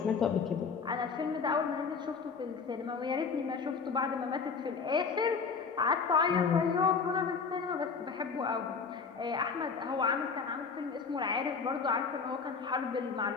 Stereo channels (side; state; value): right; quieter; 5.4 dB